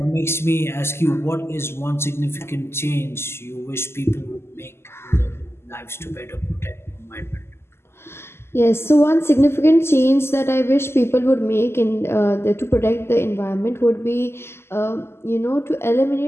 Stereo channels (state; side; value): late; right; 0.12 ms